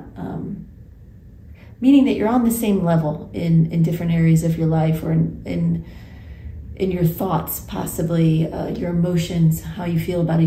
Meaning that you're on the same level in different areas of your life, or in your thoughts, possibly, your emotions, how you feel about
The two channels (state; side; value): identical; both; correlation 1.00